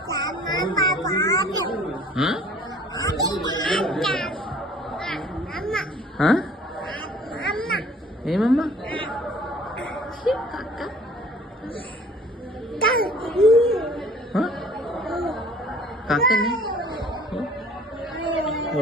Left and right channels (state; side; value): normal; both; correlation 0.51